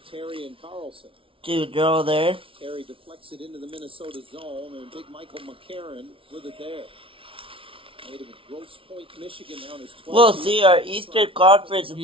Terry and Carlson. Two draw there. Terry deflects it into the Minnesota zone, and big Michael McCarron with it there. Made him a Grosse Pointe, Michigan down his 12th. We'll see. Our Eastern Conference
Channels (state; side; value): late; left; 0.26 ms